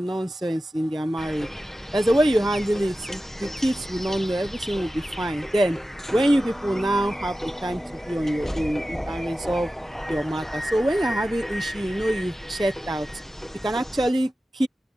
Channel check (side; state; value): both; normal; correlation 0.94